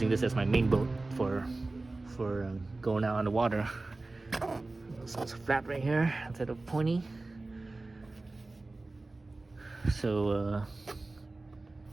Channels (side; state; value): left; quieter; 3.2 dB